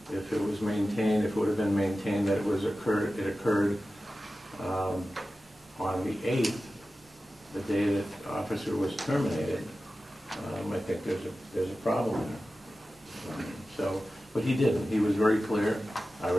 If it was maintained, if it would have been maintained that it occurred on the 8th, the day that the officer was terminated, I think there's a problem there. But he didn't. He was very clear. I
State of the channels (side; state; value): both; normal; correlation 0.94